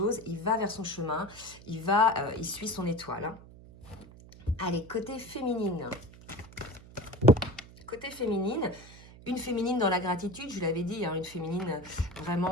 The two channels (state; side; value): noise; right; hum, 19 dB below the sound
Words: il va vers son chemin, il suit son étoile. Hein. Allez, côté féminine. Côté féminine, une féminine dans la gratitude, je l'avais dit, hein, une féminine